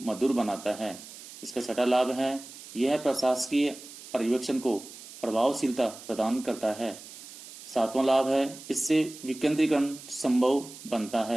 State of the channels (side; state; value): right; noise; hiss, 16 dB below the sound